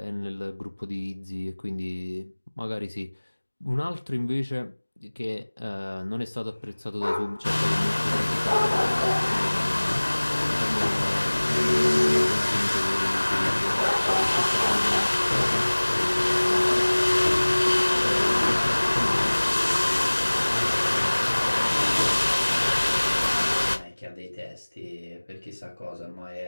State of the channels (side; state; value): both; inverted; correlation -1.00